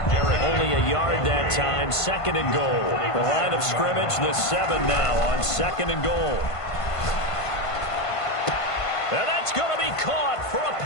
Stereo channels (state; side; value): late; right; 1.5 ms